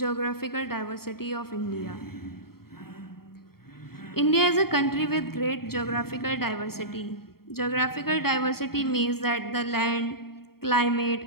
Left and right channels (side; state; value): right; late; 0.94 ms